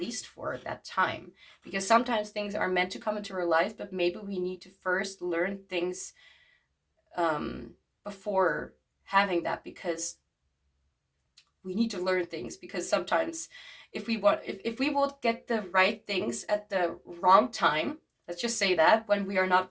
for that time. Because sometimes things are meant to come into our lives, but maybe we need to first learn things before having that, because we need to learn things. Because sometimes if we will get the right things at the wrong time, let's just say that, when we are not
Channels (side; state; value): both; identical; correlation 1.00